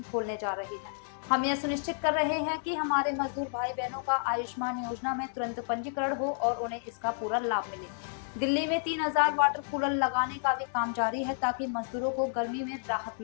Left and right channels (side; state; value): right; silent; digital silence